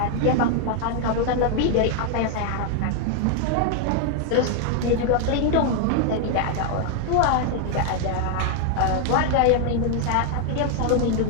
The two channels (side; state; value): both; different; correlation 0.00